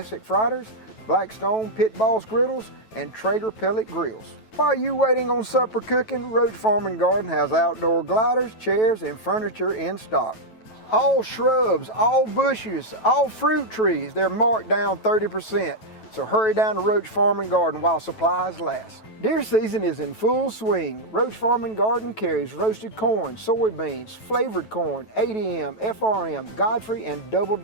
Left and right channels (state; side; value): late; right; 9.2 ms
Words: Fritters, Blackstone Pit Boss Griddles, and Traeger Pellet Grills. While you waiting on supper cooking, Roach Farm and Garden has outdoor gliders, chairs, and furniture in stock. All shrubs, all bushes, all fruit trees, they're marked down 30%. So hurry down to Roach Farm and Garden while supplies last. Deer season is in full swing. Roach Farm and Garden carries roasted corn, soybeans, flavored corn, ADM, FRM, Godfrey, and Double